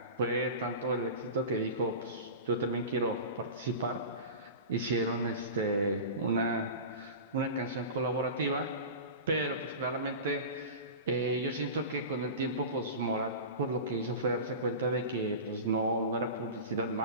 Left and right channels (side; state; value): both; inverted; correlation -0.30